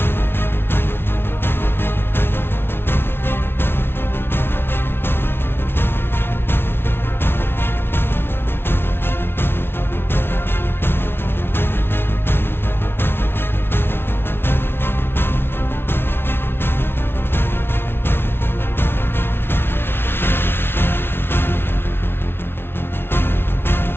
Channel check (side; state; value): right; late; 0.11 ms